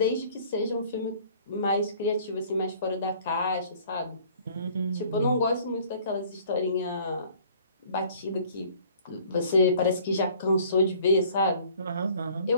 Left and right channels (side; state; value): both; inverted; correlation -0.54